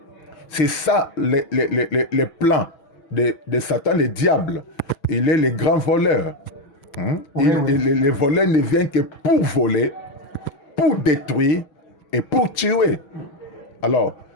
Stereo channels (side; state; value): right; late; 6.2 ms